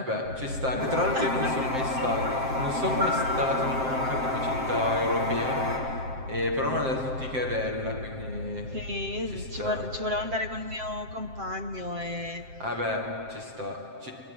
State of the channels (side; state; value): left; late; 7.6 ms